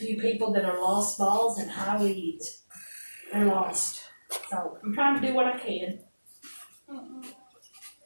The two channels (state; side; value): inverted; both; correlation -1.00